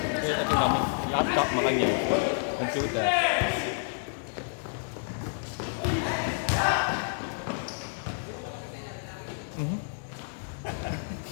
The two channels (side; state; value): right; silent; digital silence